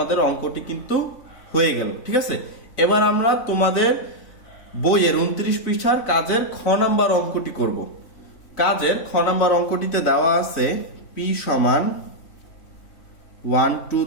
অঙ্কটি কিন্তু হয়ে গেল। ঠিক আছে, এবার আমরা তোমাদের বইয়ের 29 পৃষ্ঠার কাজের খ নাম্বার অঙ্কটি করব। কাজের খ নাম্বার অঙ্কটিতে দেওয়া আছে p সমান 1 2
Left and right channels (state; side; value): late; right; 3.5 ms